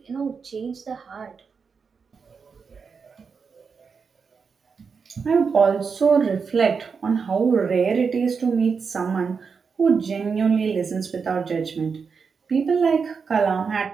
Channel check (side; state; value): left; quieter; 5.6 dB